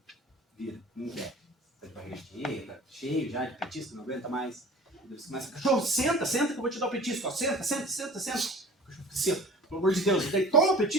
vira, não quer. Tá de barriga cheia, tá cheio já de petisco, não aguenta mais. Daí você começa, cachorro, senta que eu vou te dar o petisco. Ó, senta. O cachorro fica assim, pelo amor de Deus. Daí toma o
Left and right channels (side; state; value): both; normal; correlation 0.43